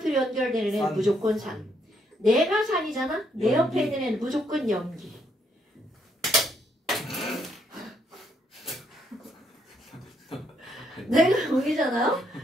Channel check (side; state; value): both; normal; correlation 0.73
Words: 연결되는 애는 무조건 산. 내가 산이잖아? 내 옆에 있는 애는 무조건 염기. 내가 염기잖아요?